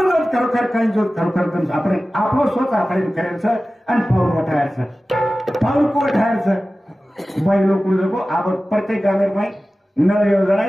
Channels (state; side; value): normal; both; correlation 0.96